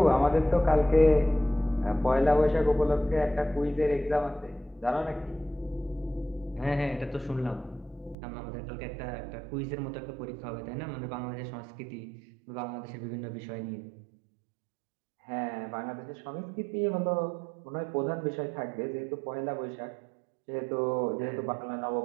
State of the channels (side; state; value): left; drops out; at 8.2 s